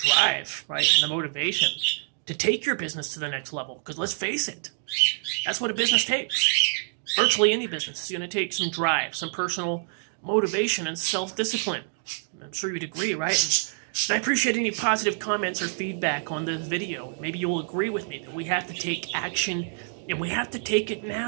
right, and the motivation to take your business to the next level. Because let's face it, that's what a business takes. Virtually any business is going to take some drive, some personal motivation, and self-discipline. I'm sure you'd agree, right? And I appreciate any positive comments or feedback on this video. Maybe you'll agree with me that we have to take action, and we have to take it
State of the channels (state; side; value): silent; left; digital silence